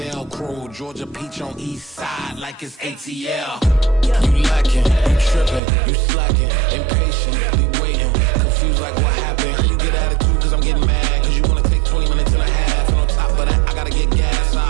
Georgia Peach on east side like it's ATL. You lacking, you tripping, you slacking, impatient, we waiting, confused like what happened. You get attitude cause I'm getting mad, cause you wanna take 20 minutes and a half. And on top of that, I gotta get gas,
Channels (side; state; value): left; drops out; at 5.6 s